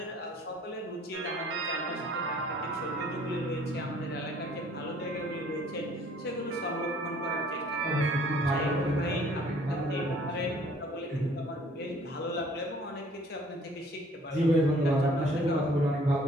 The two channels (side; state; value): both; normal; correlation 0.56